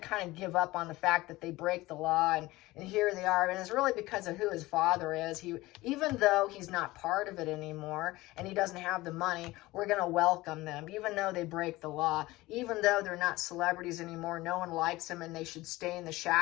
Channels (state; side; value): quieter; right; 19.2 dB